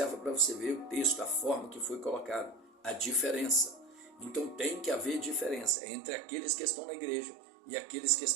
para você ver o texto, a forma que foi colocado, a diferença. Então tem que haver diferença entre aqueles que estão na igreja e aqueles que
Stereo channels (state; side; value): drops out; left; at 5.8 s